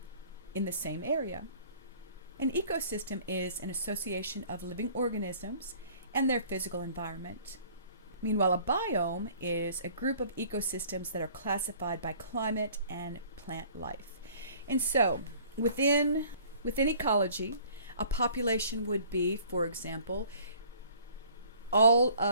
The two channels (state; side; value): inverted; both; correlation -0.53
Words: in the same area. An ecosystem is an association of living organisms and their physical environment. Meanwhile, a biome is a group of ecosystems that are classified by climate and plant life. And so, within ecology, a population would be, for example, all